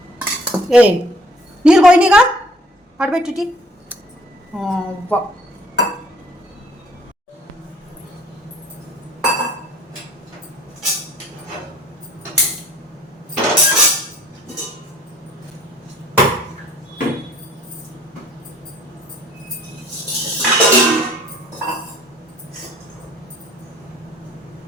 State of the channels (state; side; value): normal; both; correlation 0.55